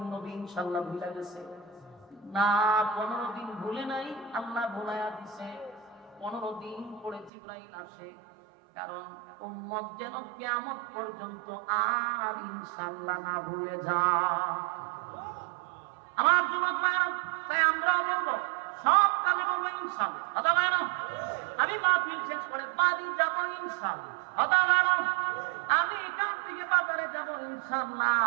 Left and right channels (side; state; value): left; drops out; at 7.3 s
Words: নবী ইনশাআল্লাহ ভুলে গেছে? না, 15 দিন ভুলে নাই, আল্লাহ ভুলাইয়া দিছে। 15 দিন পরে জিবরাইল আসে, কারণ উম্মত যেন কিয়ামত পর্যন্ত আর ইনশাআল্লাহ না ভুলে যায়। আমার যুবক ভাইরা, তাই আমরা বলবো সব কাজে বলবো ইনশাআল্লাহ। কথা বলেন, আমি মাহফিল শেষ করে বাড়ি যাব ইনশাআল্লাহ। কথা বলেন, আমি এখান থেকে বাজারে যাব ইনশাআল্লাহ,